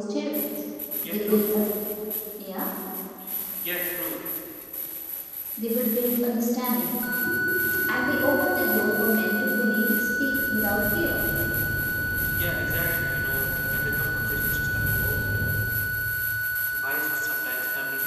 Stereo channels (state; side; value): identical; both; correlation 1.00